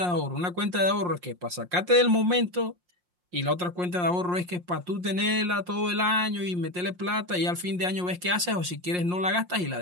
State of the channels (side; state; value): left; late; 5.6 ms